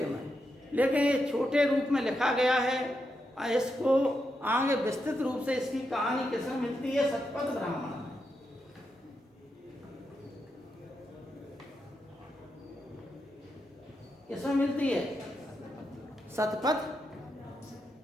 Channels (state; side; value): normal; both; correlation 0.84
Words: में। लेकिन ये छोटे रूप में लिखा गया है। इसको आगे विस्तृत रूप से इसकी कहानी किसमें मिलती है? सतपथ ब्राह्मण। किसमें मिलती है? सतपथ